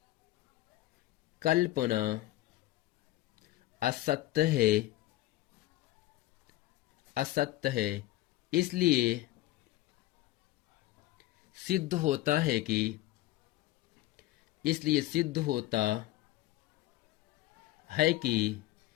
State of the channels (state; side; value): quieter; right; 16.4 dB